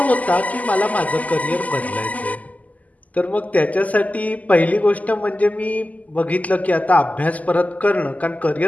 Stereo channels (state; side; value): late; right; 0.076 ms